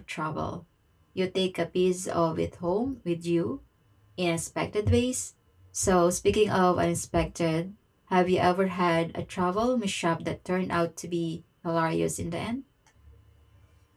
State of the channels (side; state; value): both; identical; correlation 1.00